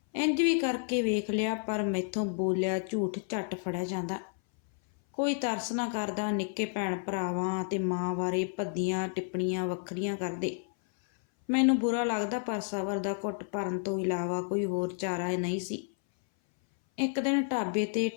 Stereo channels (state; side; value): silent; right; 57 dB below the other